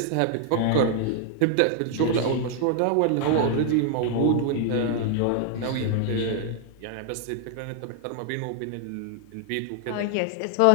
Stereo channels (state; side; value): different; both; correlation 0.00